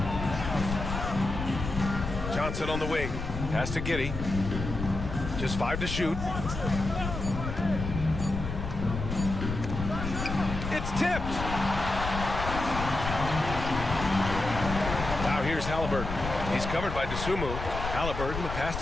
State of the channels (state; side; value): noise; left; rumble, 5 dB below the sound